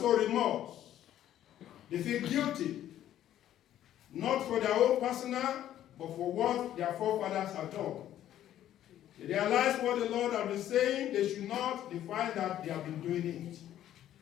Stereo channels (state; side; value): quieter; right; 11.9 dB